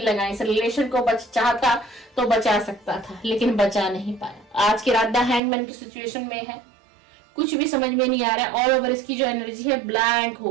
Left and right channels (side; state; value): left; drops out; at 5.4 s